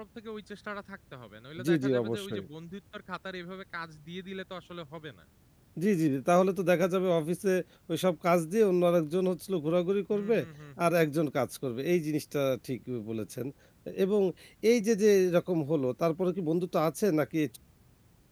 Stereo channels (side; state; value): both; identical; correlation 1.00